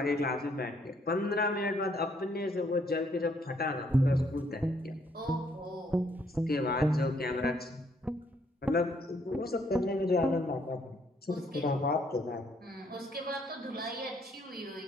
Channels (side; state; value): both; normal; correlation 0.69